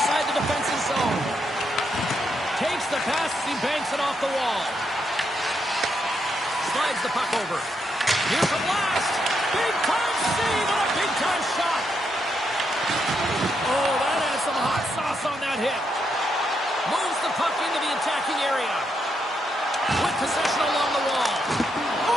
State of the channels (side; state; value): both; normal; correlation 0.80